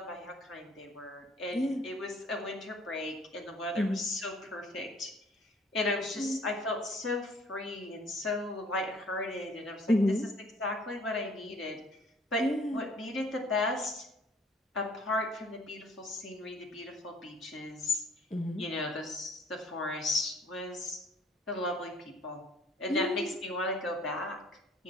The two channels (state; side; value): normal; both; correlation 0.57